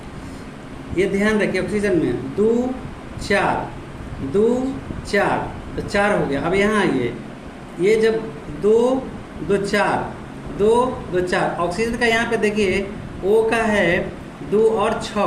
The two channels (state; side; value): identical; both; correlation 1.00